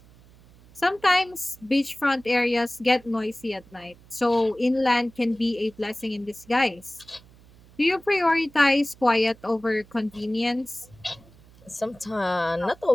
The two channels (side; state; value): right; noise; hum, 25 dB below the sound